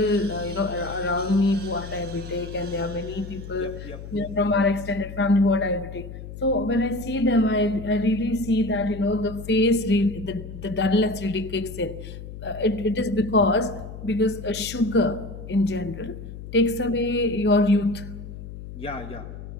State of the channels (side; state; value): left; noise; hum, 12 dB below the sound